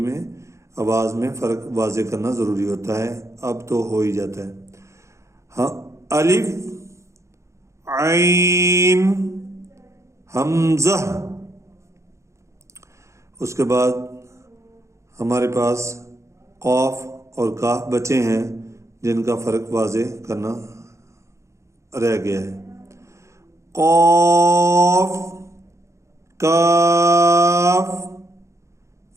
آواز میں فرق واضح کرنا ضروری ہوتا ہے. اب تو ہو ہی جاتا ہے. ہاں الف عین حمزہ. اس کے بعد ہمارے پاس قاف اور کاف بچے ہیں جن کا فرق واضح کرنا رہ گیا ہے. قاف کاف.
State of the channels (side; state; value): left; late; 0.14 ms